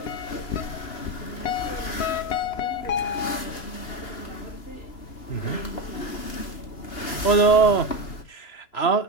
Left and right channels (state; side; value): late; right; 3.0 ms